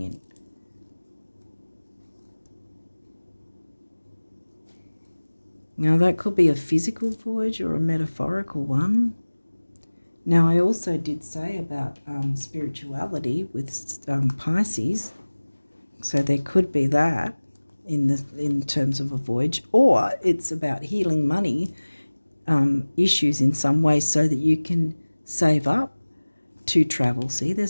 Now, that could be a physical voyage or a metaphorical one. Now, I also did say about spirituality with Pisces. So there could be that in terms of a voyage, or it's about healing money issues in some way so that you can save up to travel. See,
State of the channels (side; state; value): both; inverted; correlation -1.00